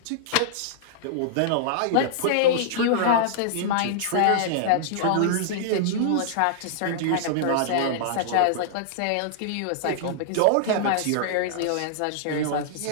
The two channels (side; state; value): both; different; correlation -0.01